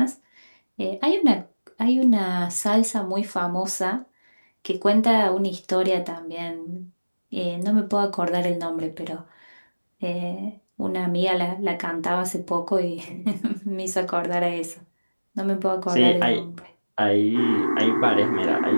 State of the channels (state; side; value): inverted; both; correlation -1.00